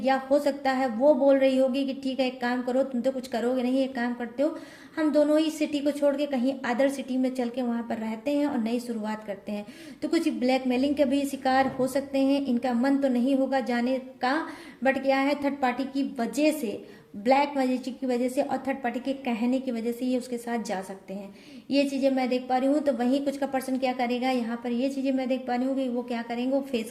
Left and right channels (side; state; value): both; identical; correlation 1.00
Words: या हो सकता है वो बोल रही होगी कि ठीक है एक काम करो, तुम तो कुछ करोगे नहीं, एक काम करते हो, हम दोनों ही सिटी को छोड़ के कहीं अदर सिटी में चल के वहां पर रहते हैं और नई शुरुआत करते हैं। तो कुछ ब्लैकमेलिंग के भी शिकार हो सकते हैं। इनका मन तो नहीं होगा जाने का, बट क्या है, थर्ड पार्टी की वजह से, ब्लैक मैजिक की वजह से और थर्ड पार्टी के कहने की वजह से ये उसके साथ जा सकते हैं। ये चीजें मैं देख पा रही हूँ। तो वहीं कुछ का पर्सन क्या करेगा, यहाँ पर ये चीजें मैं देख पा रही हूँ कि वो क्या करेंगे, वो फेस